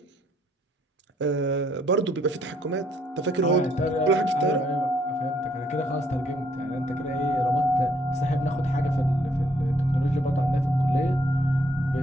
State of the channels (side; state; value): both; normal; correlation 0.68